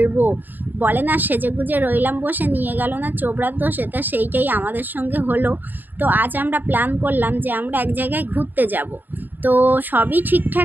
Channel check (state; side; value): late; left; 0.089 ms